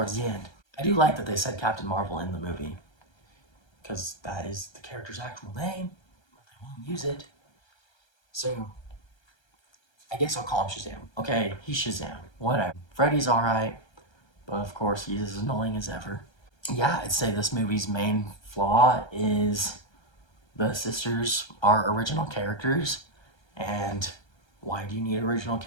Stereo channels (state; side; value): late; right; 1.3 ms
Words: the end. I do like that they said Captain Marvel in the movie, because that is the character's actual name, but they won't use it. So, I guess I'll call him Shazam. Okay, he's Shazam. Whatever. Freddy's alright, but of course he's as annoying as ever. Yeah, I'd say this movie's main flaw is the sisters are original characters, and why do you need original